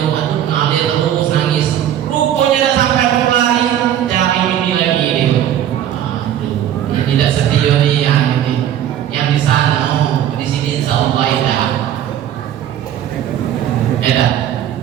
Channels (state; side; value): quieter; left; 10.7 dB